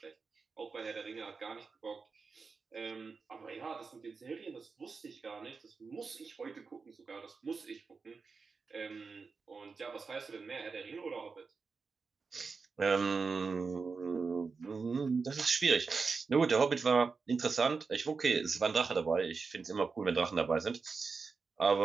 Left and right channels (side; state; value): left; quieter; 4.8 dB